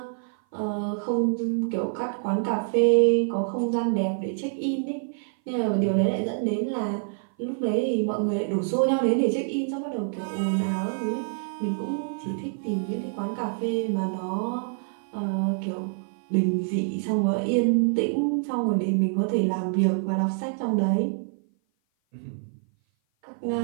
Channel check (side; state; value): left; silent; 56 dB below the other